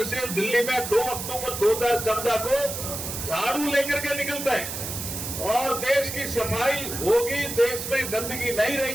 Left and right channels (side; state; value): right; noise; hiss, 6 dB below the sound